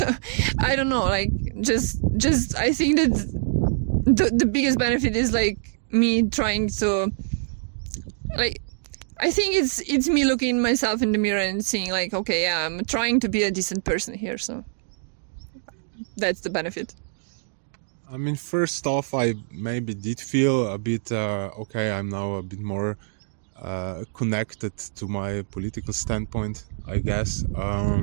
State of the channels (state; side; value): silent; left; digital silence